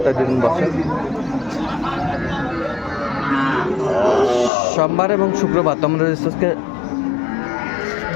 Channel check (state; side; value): drops out; right; at 4.5 s